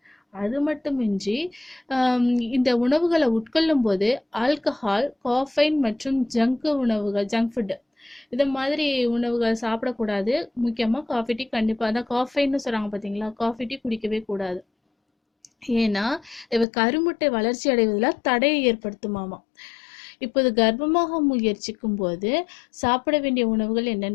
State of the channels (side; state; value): right; drops out; at 16.7 s